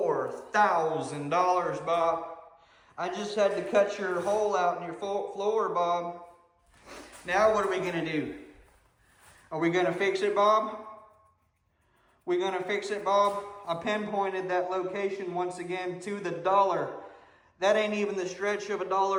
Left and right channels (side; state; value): both; identical; correlation 1.00